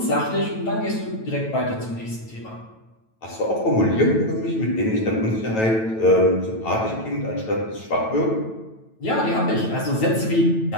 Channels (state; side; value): late; right; 9.1 ms